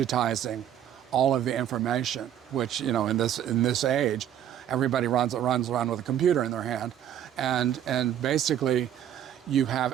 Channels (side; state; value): left; quieter; 10.4 dB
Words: all of the information, which in this age, everybody runs around with a computer in their hand, and basically you have